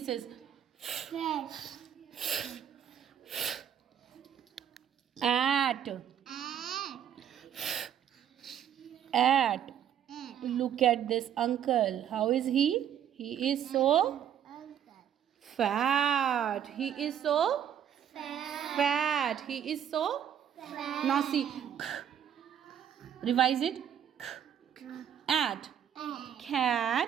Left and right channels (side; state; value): left; quieter; 9.5 dB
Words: is at. Look at this uncle. How is he? He is so fat. He is so fat. He is so fat. Now see. Revise it. At.